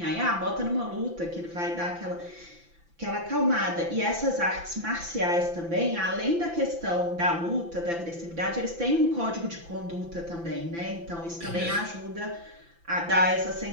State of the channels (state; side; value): late; left; 5.9 ms